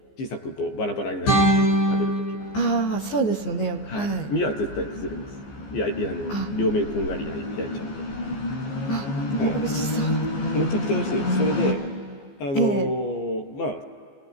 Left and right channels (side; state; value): right; late; 14 ms